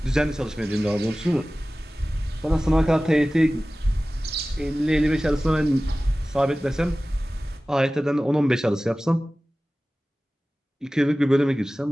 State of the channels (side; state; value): both; normal; correlation 0.97